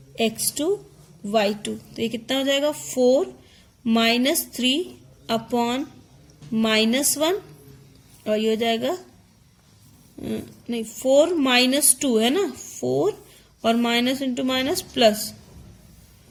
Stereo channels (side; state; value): both; identical; correlation 1.00